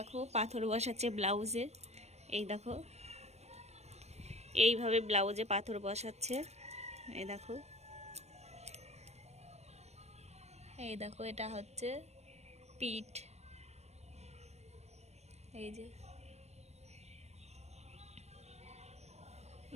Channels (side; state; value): left; late; 0.31 ms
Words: পাথর বসাচ্ছে ব্লাউজে। এই দেখো, এইভাবে ব্লাউজে পাথর বসাচ্ছে। এই দেখো, এই দেখো, এটা হচ্ছে পিঠ। এই যে